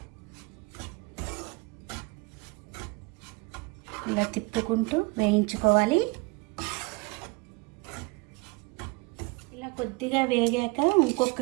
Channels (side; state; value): left; quieter; 27.4 dB